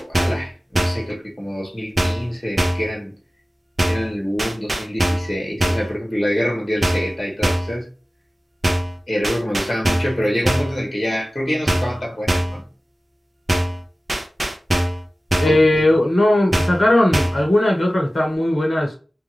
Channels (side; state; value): both; normal; correlation 0.96